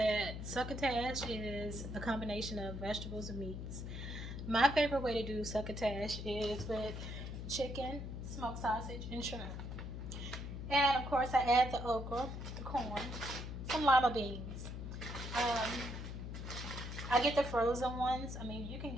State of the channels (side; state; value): left; noise; hum, 6 dB below the sound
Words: succotash is a combination of vegetables and meats. My favorite way to do succotash is with chicken, smoked sausage, and shrimp. And of course, I add the okra, the corn, some lima beans. Um, I get the frozen ones. I mean, you can